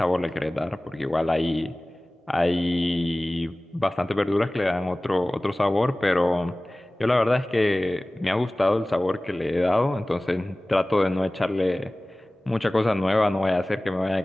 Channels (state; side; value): normal; both; correlation 0.98